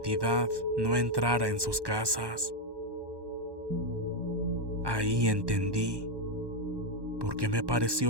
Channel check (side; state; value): left; late; 1.2 ms